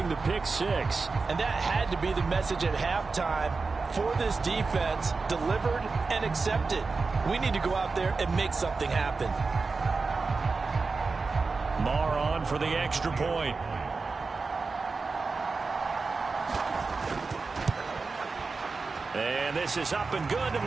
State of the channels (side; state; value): left; quieter; 4.2 dB